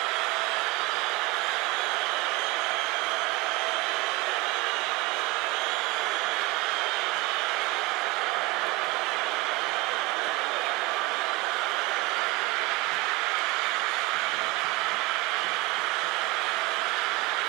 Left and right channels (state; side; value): quieter; left; 21.4 dB